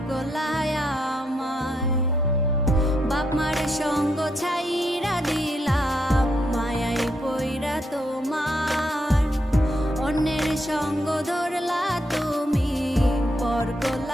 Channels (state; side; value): normal; both; correlation 0.78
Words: করলায় আমায়। বাপ মার সঙ্গ ছাইরা দিলাম, মায়াই পইরা তোমার। অন্যের সঙ্গ ধরলা তুমি, পর